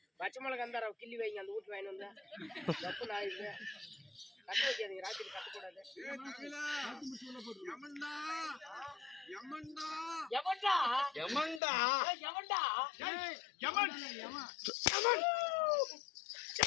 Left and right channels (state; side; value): drops out; right; at 11.6 s